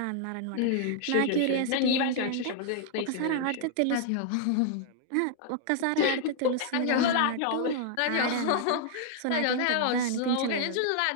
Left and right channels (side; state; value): both; different; correlation 0.00